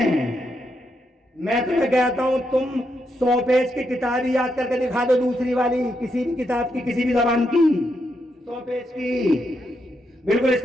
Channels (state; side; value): normal; both; correlation 0.81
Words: میں تمہیں کہتا ہوں تم 100 پیج کی کتاب یاد کر کے دکھا دو، دوسری والی کسی بھی کتاب کی، کسی بھی زبان کی 100 پیج کی، بالکل اس